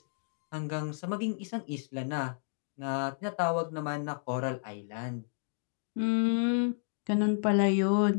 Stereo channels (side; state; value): right; silent; digital silence